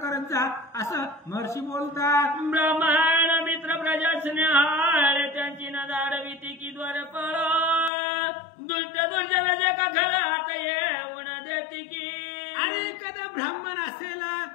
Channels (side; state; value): right; drops out; at 7.9 s